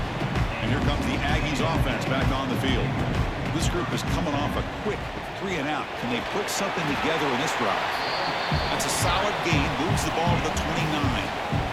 And here comes the Aggies offense back on the field. This group is coming off a quick 3 and out. Can they put something together in this drive? That's a solid gain. Moves the ball to the 29.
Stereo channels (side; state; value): both; identical; correlation 1.00